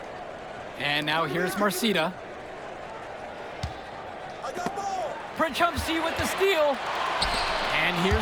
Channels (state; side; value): identical; both; correlation 1.00